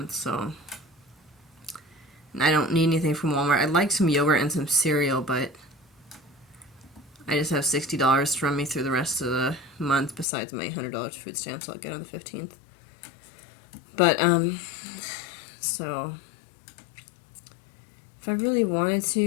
so I don't need anything from Walmart. I'd like some yogurt and some cereal, but I just have $60 to run me through the rest of the month besides my $100 food stamps I'll get on the 15th. But, so if I really wanted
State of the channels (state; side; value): drops out; right; at 10.2 s